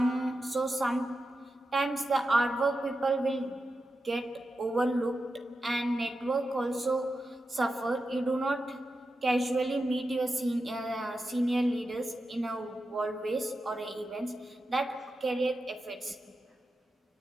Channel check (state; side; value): normal; both; correlation 0.90